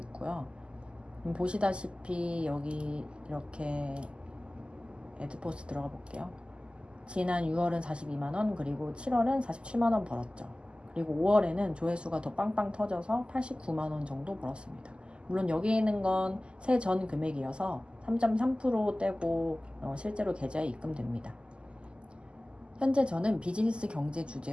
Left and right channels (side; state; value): left; late; 0.050 ms